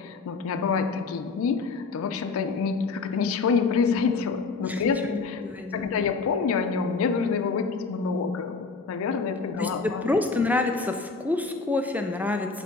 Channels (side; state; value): right; quieter; 4.4 dB